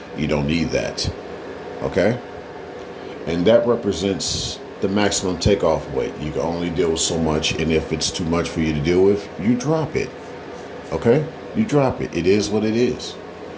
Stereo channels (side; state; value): both; identical; correlation 1.00